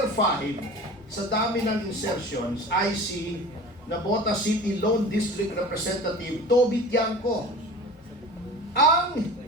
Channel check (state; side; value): normal; both; correlation 0.38